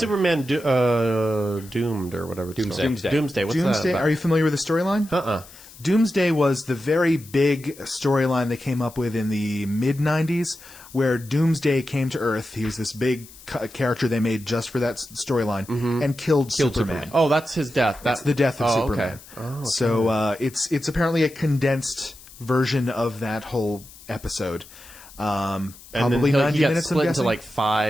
Doomed or whatever? It's Doomsday. called? Doomsday. What's Doomsday, that are you familiar with the storyline? Doomsday was the very big storyline they came up with in the mid-90s, where Doomsday came to Earth. He was this big character they made just for that storyline, and killed Superman. Oh, that's his death. That's the death of Oh, Superman. okay. Oh, So it's apparently a condensed version of that whole episode. And Probably then 90 he got minutes, I'm split into guessing? like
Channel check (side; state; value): left; noise; hiss, 20 dB below the sound